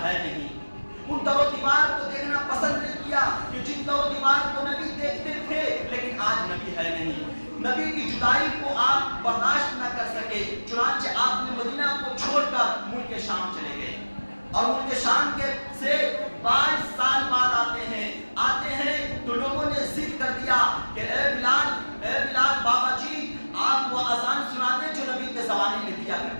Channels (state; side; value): inverted; both; correlation -1.00